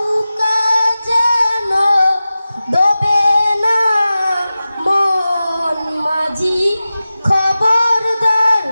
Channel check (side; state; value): both; inverted; correlation -0.95